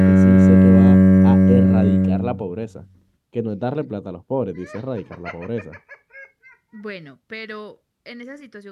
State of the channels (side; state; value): both; identical; correlation 1.00